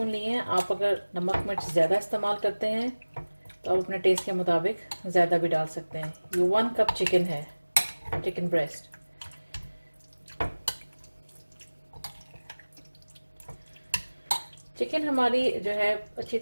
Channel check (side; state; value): both; inverted; correlation -1.00